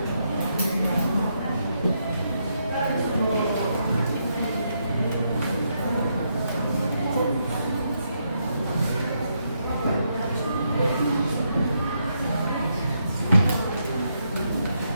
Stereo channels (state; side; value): inverted; both; correlation -0.79